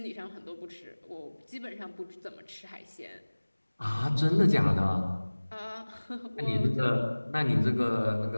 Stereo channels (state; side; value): inverted; both; correlation -1.00